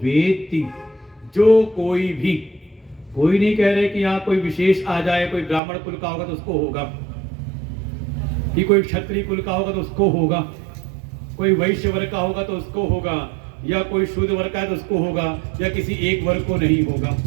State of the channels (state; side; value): drops out; left; at 5.6 s